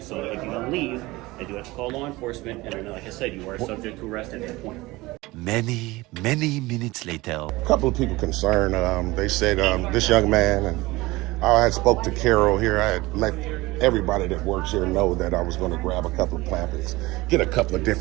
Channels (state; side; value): quieter; left; 20.6 dB